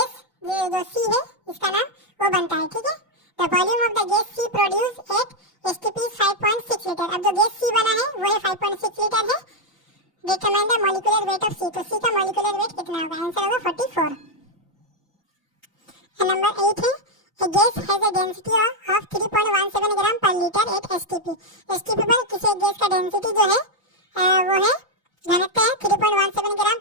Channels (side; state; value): both; normal; correlation 0.01